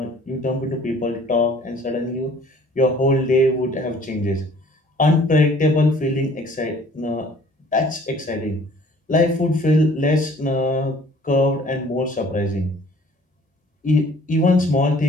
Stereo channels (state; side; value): normal; both; correlation 0.54